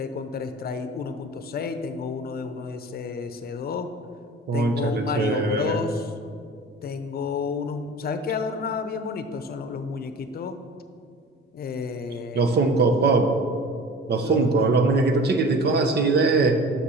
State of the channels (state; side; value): normal; both; correlation 0.39